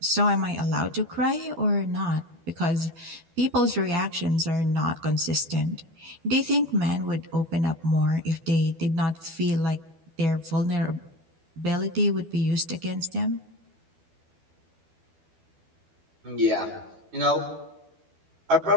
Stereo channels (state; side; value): late; left; 12 ms